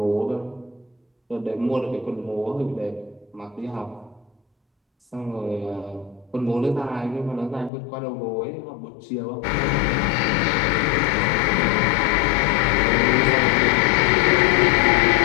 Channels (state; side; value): drops out; right; at 7.7 s